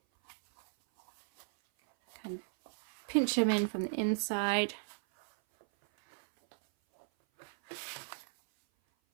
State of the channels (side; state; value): left; silent; 54 dB below the other